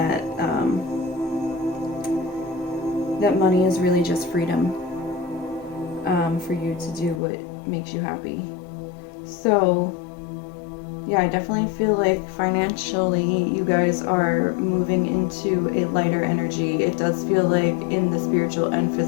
that money is really just freedom for you to do what makes you happy. So yeah, I definitely feel like financially you guys are moving into a lighter energy. It does feel like in the spiritual and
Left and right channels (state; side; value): drops out; right; at 7.2 s